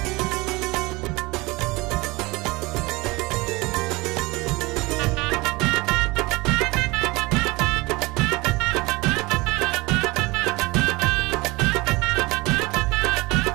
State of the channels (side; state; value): left; quieter; 23.2 dB